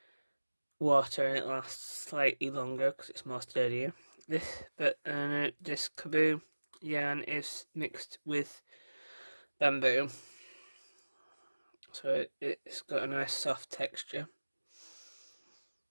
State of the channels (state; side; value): inverted; both; correlation -1.00